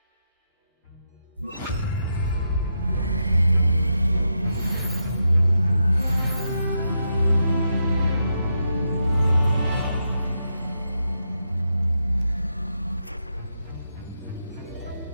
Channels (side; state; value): both; inverted; correlation -0.84